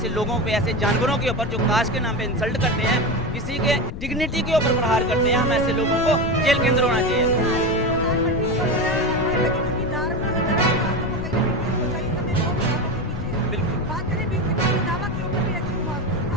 लोगों पे, ऐसे जानवरों के ऊपर जो कास्ट के नाम पे इंसल्ट करते हैं, किसी के डिग्निटी के ऊपर प्रहार करते हैं, हम ऐसे लोगों को जेल के अंदर होना चाहिए।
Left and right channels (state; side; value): noise; left; rumble, 7 dB below the sound